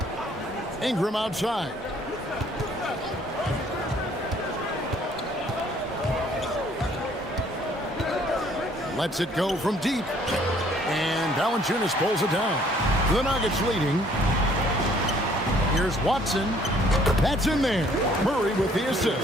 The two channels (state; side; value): normal; both; correlation 0.60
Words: Ingram outside. Lets it go from deep. And Valanciunas pulls it down. The Nuggets leading. Here's Watson. That's in there. Murray with the